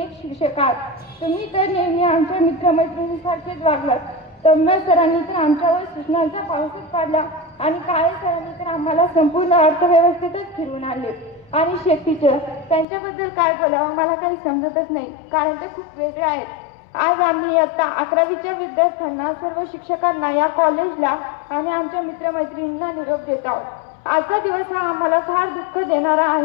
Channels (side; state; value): right; drops out; at 12.9 s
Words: शिक्षक आहात। तुम्ही तर नेहमी आमच्या मित्रमैत्रिणींसारखेच वागलात। तम्या सरांनी तर आमच्यावर सूचनांचा पाऊसच पाडला आणि काळे सरांनी तर आम्हाला संपूर्ण अर्थव्यवस्थेतच फिरवून आणले। आणि शेख टीचर, त्यांच्याबद्दल काय बोलावं मला काही समजतच नाही कारण ते खूप वेगळे आहेत। आज आम्ही इयत्ता 11वीच्या विद्यार्थ्यांना, सर्व शिक्षकांना, या कॉलेजला आणि आमच्या मित्रमैत्रिणींना निरोप देत आहोत। आजचा दिवस हा आम्हाला फार दुःख देणारा